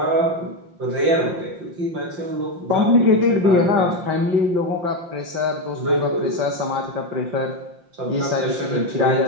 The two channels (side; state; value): left; late; 5.7 ms